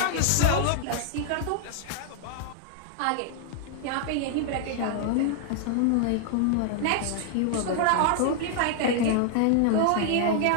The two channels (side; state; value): both; different; correlation 0.00